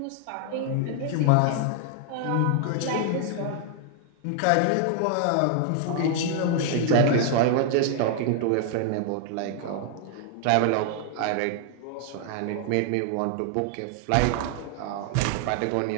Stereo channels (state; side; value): different; both; correlation 0.00